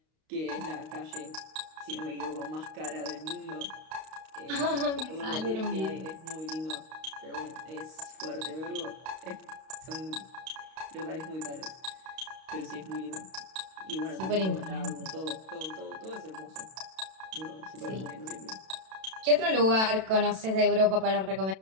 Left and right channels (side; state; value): left; late; 32 ms